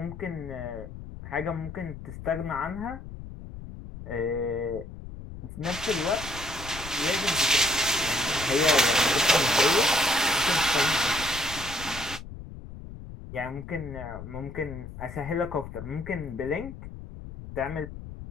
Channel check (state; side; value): noise; left; rumble, 12 dB below the sound